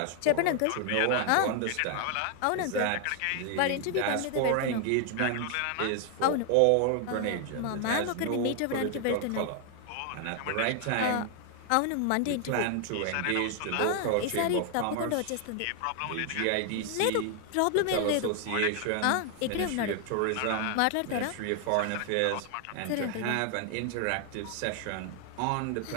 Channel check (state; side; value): different; both; correlation 0.00